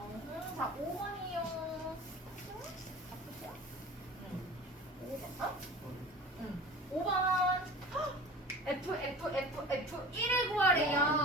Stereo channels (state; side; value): normal; both; correlation 0.38